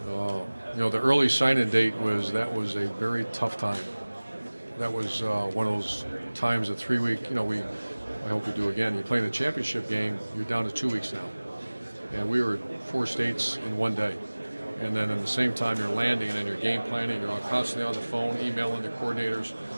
The early sign-in date was a very tough time. That was one of those times, a 3-week. I hope we do again. You play in the championship game, you're down to 2 weeks now, and we were at 4 states in one day. And then at the same time, you're landing and you're game planning. You're constantly on the phone, emailing the coordinators,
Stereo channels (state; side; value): inverted; both; correlation -1.00